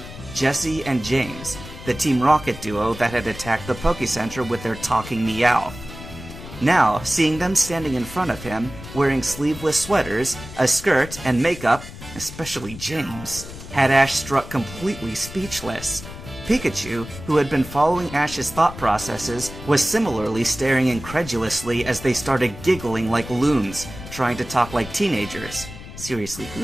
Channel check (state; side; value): noise; left; rumble, 13 dB below the sound